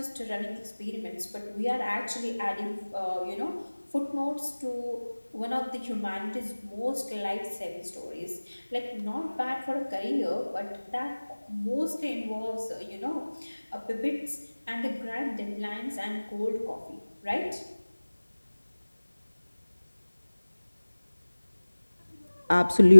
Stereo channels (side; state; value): both; inverted; correlation -1.00